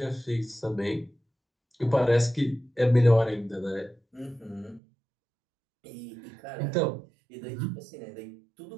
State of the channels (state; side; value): drops out; left; at 4.8 s